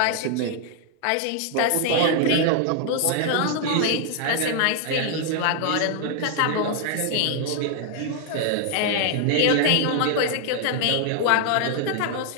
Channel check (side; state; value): both; different; correlation 0.00